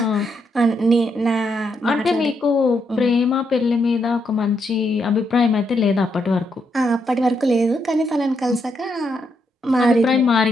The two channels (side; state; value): both; normal; correlation 0.78